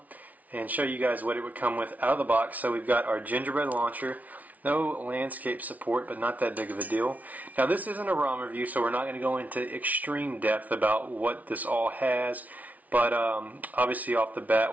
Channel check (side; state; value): left; late; 0.073 ms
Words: and show you guys what it would come with out of the box. So we've got our Gingerbread launcher, no landscape support, but not that big of a deal. Now this isn't a ROM review, so we're not going to go into extreme depth about what this all has. But obviously off the